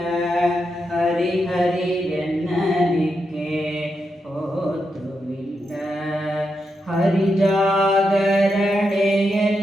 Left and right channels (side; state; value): both; normal; correlation 0.85